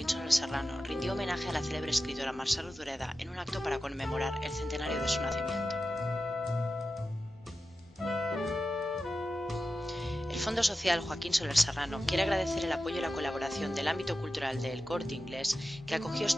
Soler Serrano rindió homenaje a la célebre escritora Mercè Rodoreda en un acto para conmemorar el centenario de su nacimiento. El Fondo Social Joaquín Soler Serrano quiere agradecer el apoyo y la colaboración del ámbito cultural de El Corte Inglés, que acogió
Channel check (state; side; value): normal; both; correlation 0.92